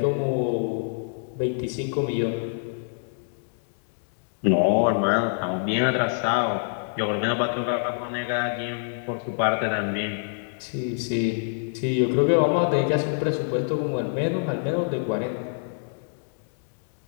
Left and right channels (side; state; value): right; silent; digital silence